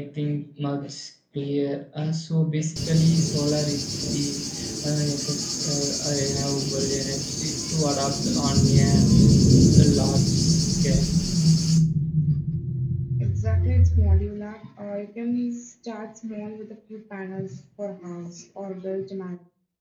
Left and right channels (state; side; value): identical; both; correlation 1.00